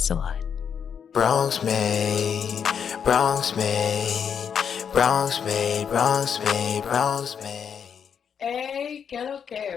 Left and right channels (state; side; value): quieter; right; 7.5 dB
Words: a lot. Bronx made, Bronx made, Bronx made, Bronx made, Bronx made. Hey, que lo